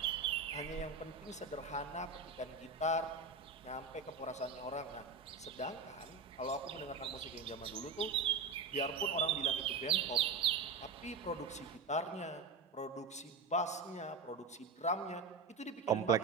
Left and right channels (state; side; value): quieter; left; 4.3 dB